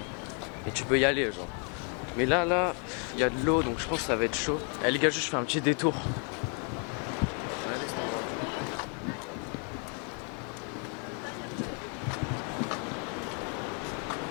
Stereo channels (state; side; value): quieter; right; 38.7 dB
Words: tu peux y aller genre. Mais là, il y a de l'eau donc je pense que ça va être chaud. Eh les gars, juste je fais un petit détour.